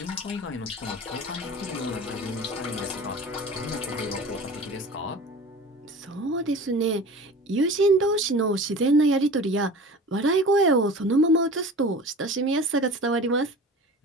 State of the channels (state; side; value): normal; both; correlation 0.38